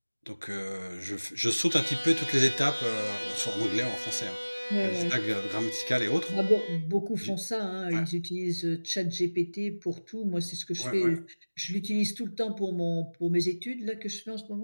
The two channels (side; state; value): both; inverted; correlation -1.00